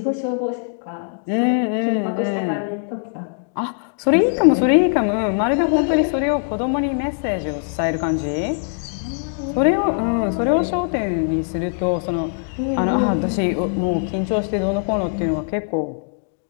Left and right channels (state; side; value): silent; right; digital silence